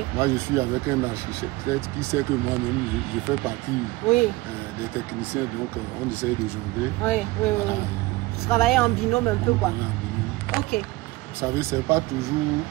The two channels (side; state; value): left; quieter; 20.6 dB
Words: Moi, je suis avec un architecte qui sait que moi-même, je fais partie des techniciens, donc on essaye de jongler. Oui. Vous travaillez en binôme un peu, quoi. Ok. Vous savez, ce n'est pas toujours